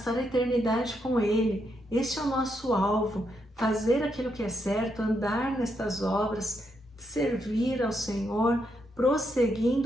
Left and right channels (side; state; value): both; normal; correlation 0.79